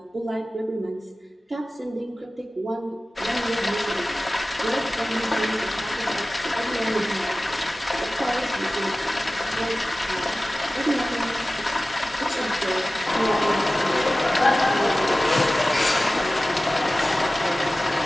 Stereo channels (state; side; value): normal; both; correlation 0.96